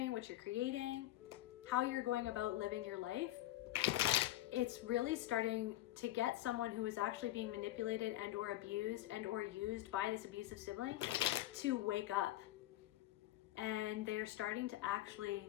what you're creating, how you're going about living your life. It's really starting to get someone who is actually being manipulated and or abused and or used by this abusive sibling to wake up. And they're starting to actually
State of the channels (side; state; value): right; quieter; 15.3 dB